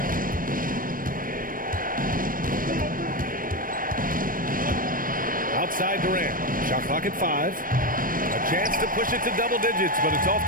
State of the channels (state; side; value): late; left; 0.40 ms